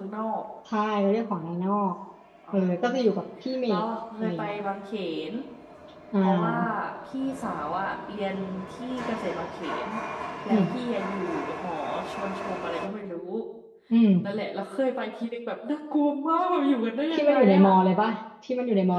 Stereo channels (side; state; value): both; identical; correlation 1.00